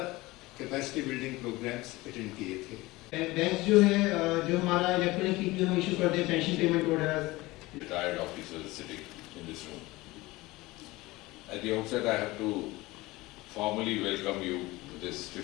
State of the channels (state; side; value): quieter; right; 20.4 dB